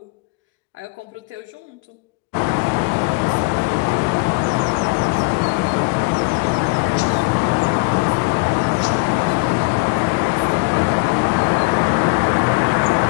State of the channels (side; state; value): right; quieter; 29.3 dB